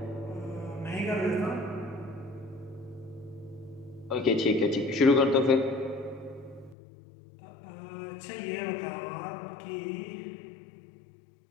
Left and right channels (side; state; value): right; drops out; at 6.8 s